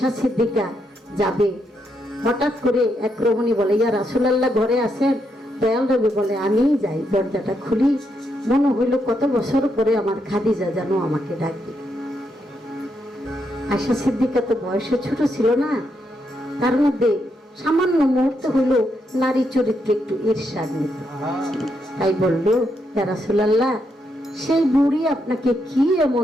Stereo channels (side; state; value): both; normal; correlation 0.80